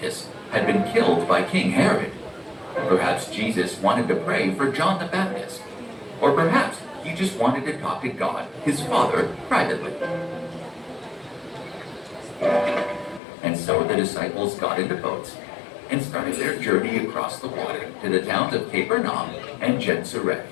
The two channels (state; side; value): drops out; right; at 13.2 s